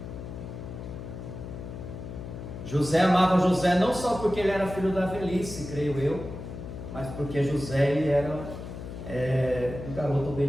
José amava José não só porque ele era filho da velhice, creio eu, mas porque José ele era um garoto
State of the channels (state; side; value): noise; left; hum, 10 dB below the sound